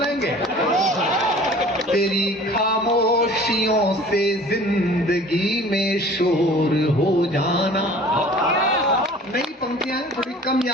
तेरी खामोशियों से जिंदगी में शोर हो जाना। नई पंक्तियां थोड़ी कम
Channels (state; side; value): normal; both; correlation 0.47